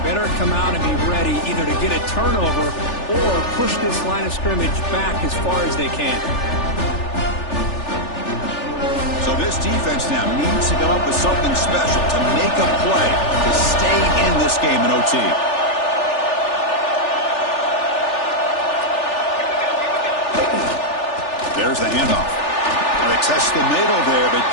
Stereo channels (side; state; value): right; late; 3.4 ms